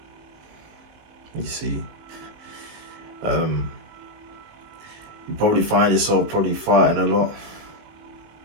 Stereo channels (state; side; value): late; left; 19 ms